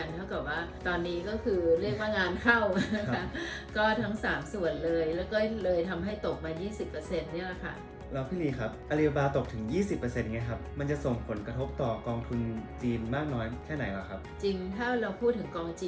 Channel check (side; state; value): both; identical; correlation 1.00